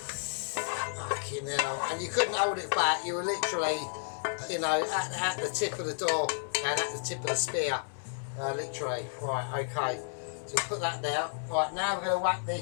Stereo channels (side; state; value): right; silent; digital silence